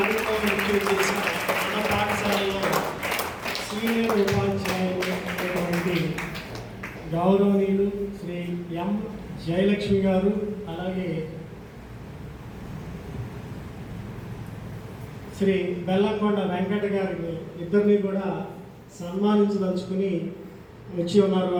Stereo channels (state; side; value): identical; both; correlation 1.00